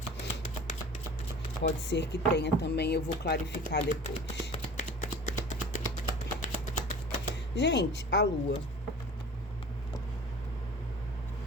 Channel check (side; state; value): both; normal; correlation 0.42